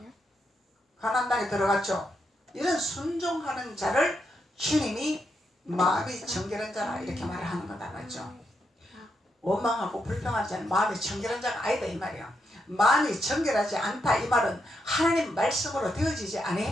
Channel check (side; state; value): both; normal; correlation 0.82